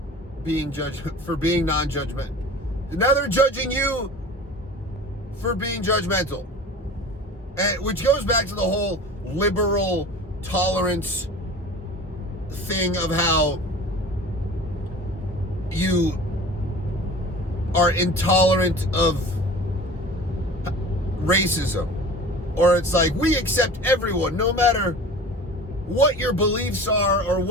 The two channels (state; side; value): normal; both; correlation 0.39